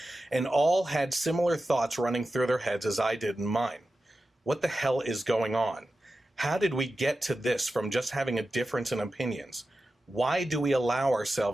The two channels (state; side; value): normal; both; correlation 0.93